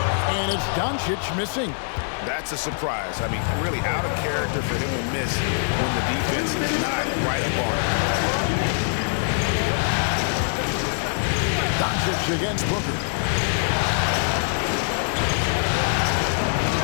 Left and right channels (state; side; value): silent; right; 63 dB below the other